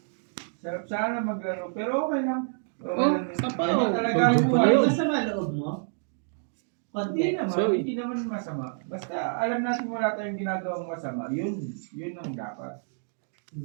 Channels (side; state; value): left; silent; digital silence